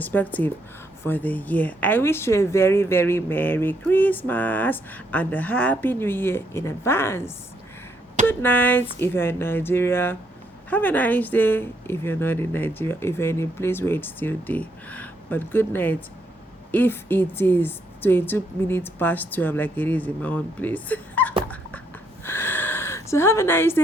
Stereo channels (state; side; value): normal; both; correlation 0.74